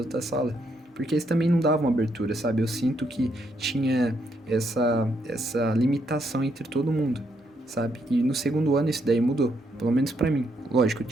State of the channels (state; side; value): normal; both; correlation 0.76